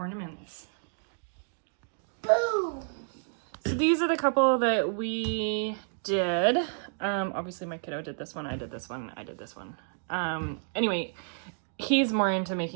Boom. So these are the couple that we did. Obviously my kiddo did this one, I did this one, I did this one. Anyway, he's more into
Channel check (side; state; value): left; silent; digital silence